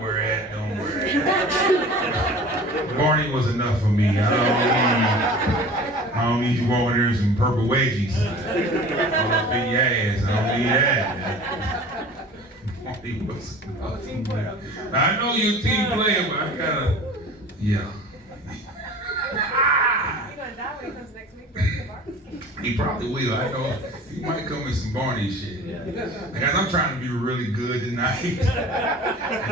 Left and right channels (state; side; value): normal; both; correlation 0.41